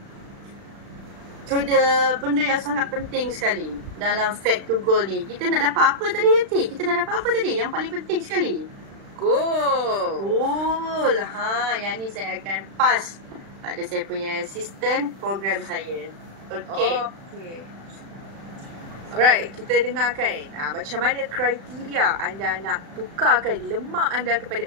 to the benda yang sangat penting sekali dalam Fact to Goal ni. Kita nak dapat apa tadi, Yati? Kita nak dapat apa tadi? Yang paling penting sekali. Goal. Yang ni saya akan pass pada saya punya assistant program saya. Okey. Alright, kita dengarkan macam mana kriteria anda nak tukarkan lemak anda kepada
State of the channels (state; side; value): late; left; 36 ms